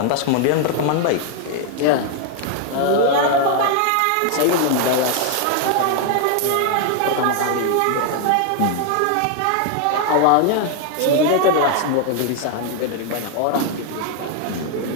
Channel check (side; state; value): both; different; correlation 0.00